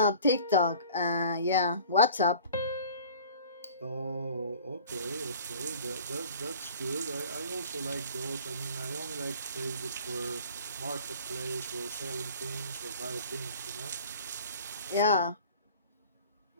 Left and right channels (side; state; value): both; inverted; correlation -0.46